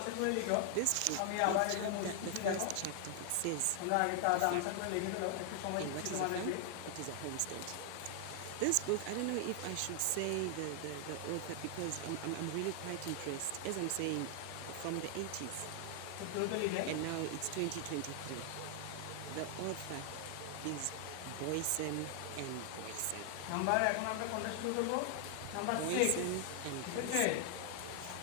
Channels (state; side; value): different; both; correlation 0.00